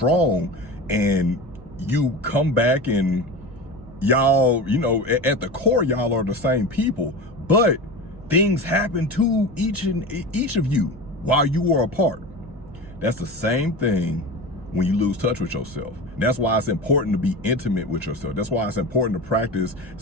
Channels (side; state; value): both; normal; correlation 0.28